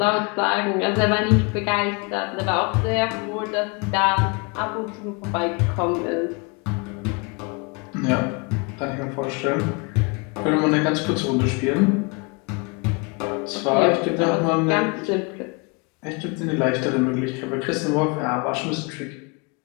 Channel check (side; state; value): right; quieter; 30.0 dB